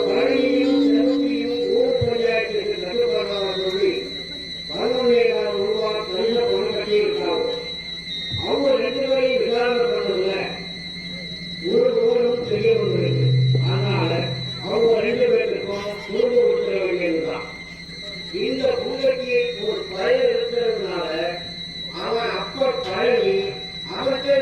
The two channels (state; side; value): identical; both; correlation 1.00